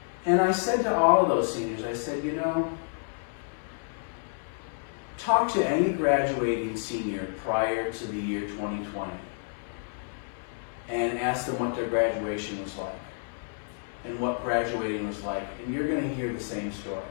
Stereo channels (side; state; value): right; silent; digital silence